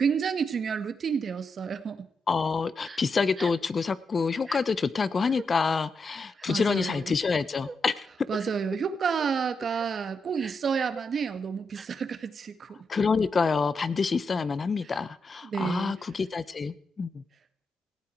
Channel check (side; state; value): both; normal; correlation 0.84